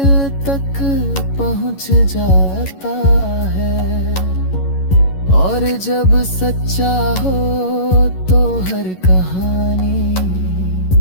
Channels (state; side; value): late; right; 11 ms